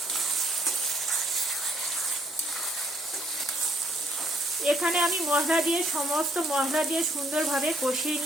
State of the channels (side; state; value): both; normal; correlation 0.67